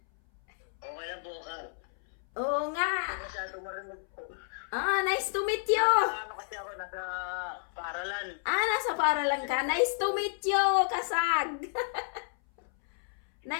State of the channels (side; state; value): right; silent; 57 dB below the other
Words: Okay lang po ka. Oo nga. Masyado marinig po. Nice to meet you! Ano kasi ako nasa paaralan. Nasa paralan ka. Nice to meet you, Kasag!